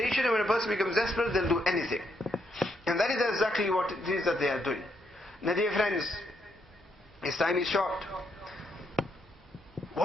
And when a person becomes desperate, they'll do anything. And that is exactly what it is that they are doing. Now dear friends, this time is short.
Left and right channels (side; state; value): both; normal; correlation 0.77